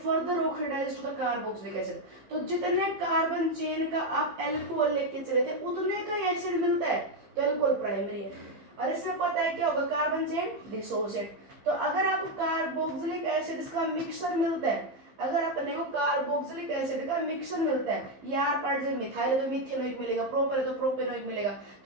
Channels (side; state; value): left; late; 15 ms